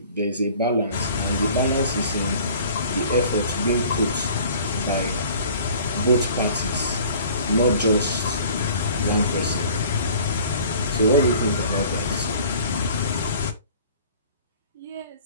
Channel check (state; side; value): inverted; both; correlation -0.49